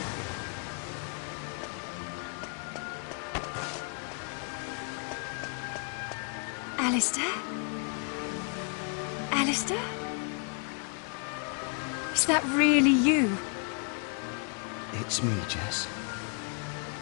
Alistair? Alistair? Is that really you? It's me, Jess.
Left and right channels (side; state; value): right; quieter; 39.3 dB